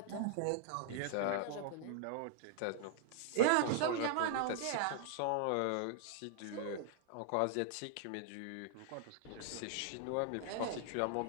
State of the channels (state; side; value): different; both; correlation -0.01